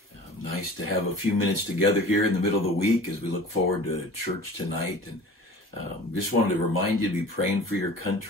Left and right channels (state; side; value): normal; both; correlation 0.42